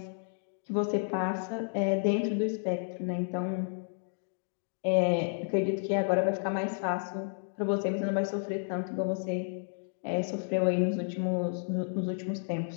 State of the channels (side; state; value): right; silent; digital silence